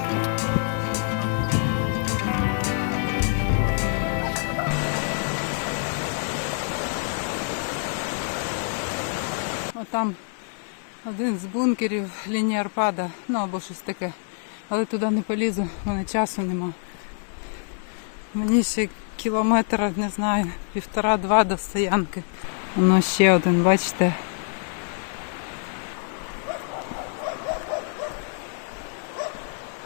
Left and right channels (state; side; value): silent; right; 61 dB below the other